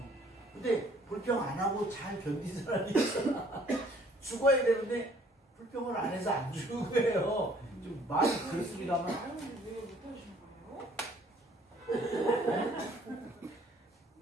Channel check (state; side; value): normal; both; correlation 0.59